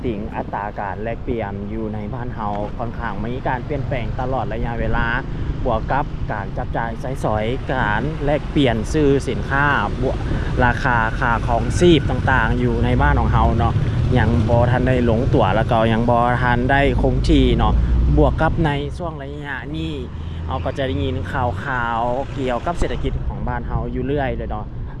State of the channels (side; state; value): both; identical; correlation 1.00